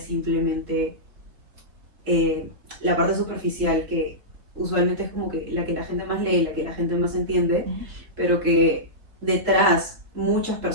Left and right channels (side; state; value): left; late; 3.7 ms